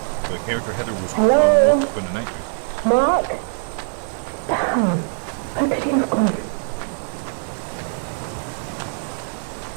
the character Heather was Hello? up in a nightmare. Mark? Damn, where could he have gone?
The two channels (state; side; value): silent; left; 64 dB below the other